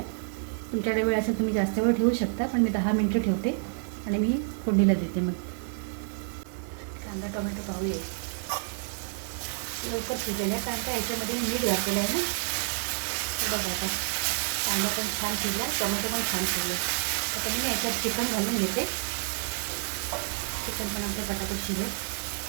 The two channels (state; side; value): silent; left; digital silence